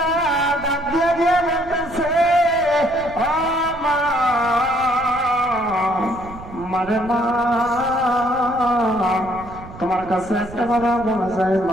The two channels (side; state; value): right; noise; rumble, 16 dB below the sound